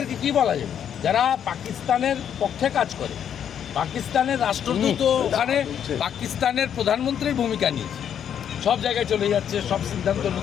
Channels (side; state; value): right; quieter; 8.9 dB